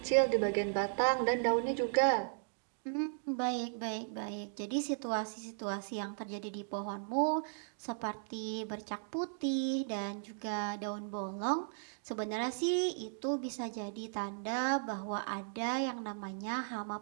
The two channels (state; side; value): silent; left; digital silence